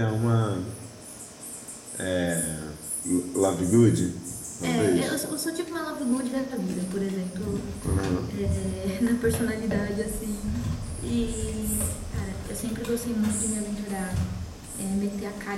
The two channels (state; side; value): identical; both; correlation 1.00